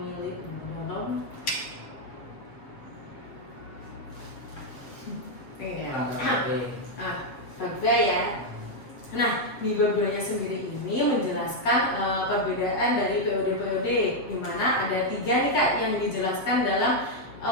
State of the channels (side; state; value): right; late; 7.9 ms